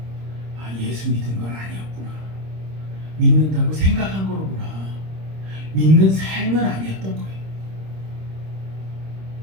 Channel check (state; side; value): late; left; 26 ms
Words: 예수 믿은 건 아니었구나. 믿는다고 생각한 거로구나. 믿는 삶은 아니었던 거예요.